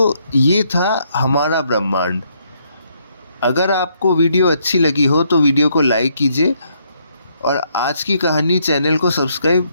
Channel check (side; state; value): both; inverted; correlation -0.72